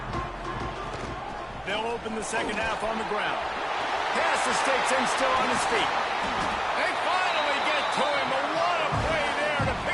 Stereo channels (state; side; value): identical; both; correlation 1.00